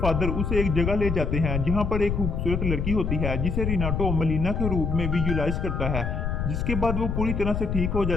उसे एक जगह ले जाते हैं जहाँ पर एक खूबसूरत लड़की होती है जिसे रिनाटो मलीना के रूप में विजुअलाइज करता है, जिसके बाद वो पूरी तरह से ठीक हो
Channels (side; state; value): left; noise; rumble, 1 dB below the sound